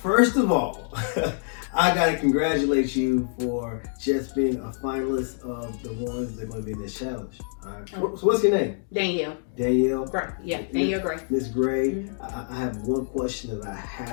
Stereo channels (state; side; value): silent; right; digital silence